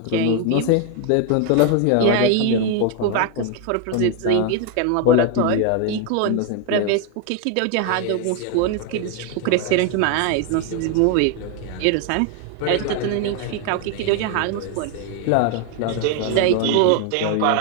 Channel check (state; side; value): different; both; correlation 0.01